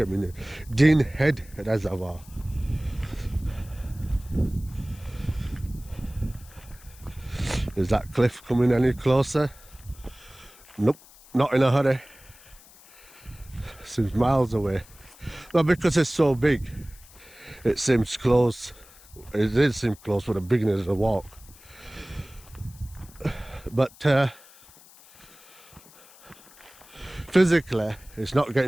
me name. Deanhead Reservoir. Is that cliff coming any closer? Nope, not in a hurry. Seems miles away. Well, because it's so big, it seems close. It did seem close for the beginning of the walk. But physically, it's not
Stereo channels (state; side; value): noise; left; hiss, 23 dB below the sound